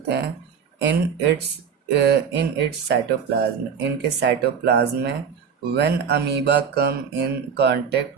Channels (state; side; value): quieter; left; 6.9 dB